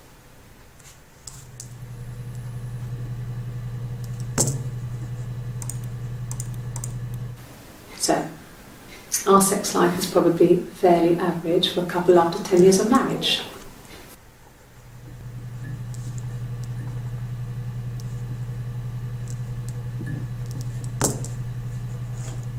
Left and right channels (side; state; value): both; identical; correlation 1.00